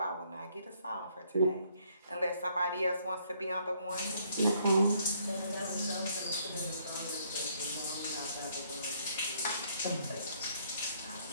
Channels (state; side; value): inverted; both; correlation -0.67